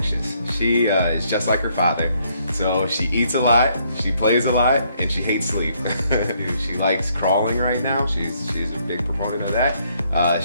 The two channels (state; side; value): inverted; both; correlation -0.70